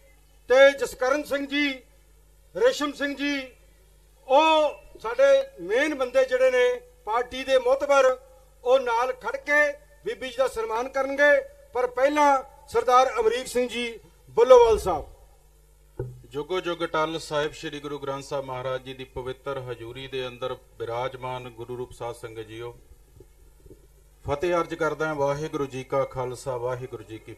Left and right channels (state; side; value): identical; both; correlation 1.00